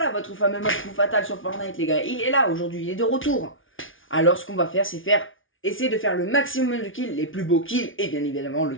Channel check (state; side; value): late; right; 0.57 ms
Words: votre fameux mode coup fatal sur Fortnite les gars. Il est là aujourd'hui, il est de retour. Alors ce qu'on va faire, c'est essayer de faire le maximum de kills, les plus beaux kills, et bien évidemment le